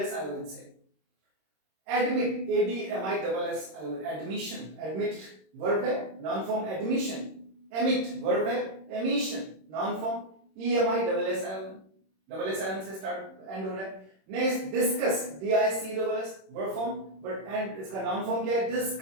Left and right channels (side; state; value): left; late; 26 ms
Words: आयोन से। Admit, ADMISS ion, admission, admit verb है, noun form admission, emit verb है, emission, noun form EMISS ion, double S ion से स्टार्ट एंड हो रहा है। Next discuss, DISCUSS verb form, but end इसका noun form क्या है,